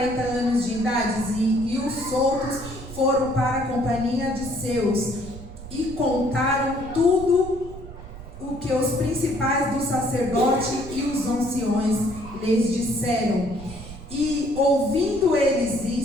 anos de idade, e os outros foram para a companhia de seus, e contaram tudo o que os principais do sacerdote e os anciões lhes disseram. E ouvindo eles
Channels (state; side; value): noise; right; rumble, 14 dB below the sound